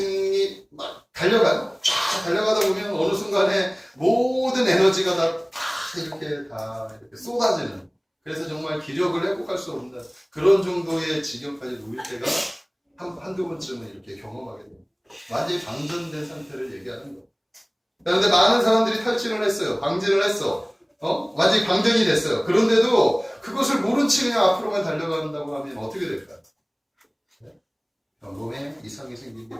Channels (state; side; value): identical; both; correlation 1.00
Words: 막 달려가요. 쫙 달려가다 보면 어느 순간에 모든 에너지가 다 이렇게 쏟아지는, 그래서 정말 기력을 회복할 수 없는 그런 정도의 지경까지 놓일 때가 한두 번쯤은 이렇게 경험하게 됩니다. 완전히 방전된 상태를 얘기하는 거예요. 그런데 많은 사람들이 탈진을 했어요. 방진을 했어. 완전히 방전이 됐어요. 그런데도 그것을 모른 채 그냥 앞으로만 달려간다고 하면 어떻게 될까요? 몸에 이상이